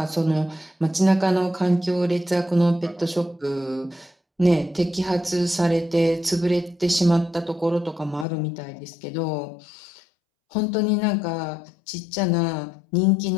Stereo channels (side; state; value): right; drops out; at 8.2 s